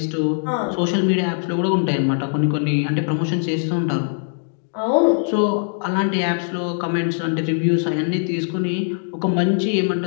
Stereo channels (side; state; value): right; silent; digital silence